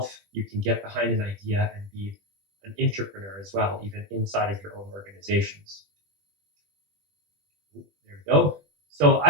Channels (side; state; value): left; late; 20 ms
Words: You can get behind an idea and be an entrepreneur as well, even inside of your own organizations. There we go. So I